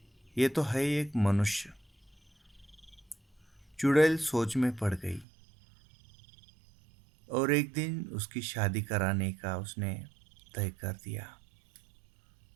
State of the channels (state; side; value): drops out; left; at 5.2 s